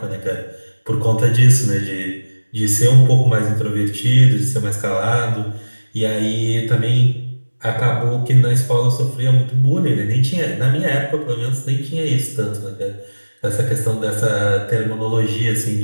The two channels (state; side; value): inverted; both; correlation -1.00